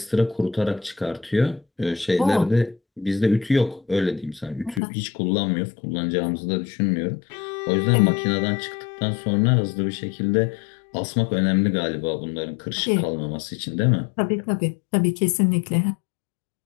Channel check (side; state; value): right; drops out; at 4.8 s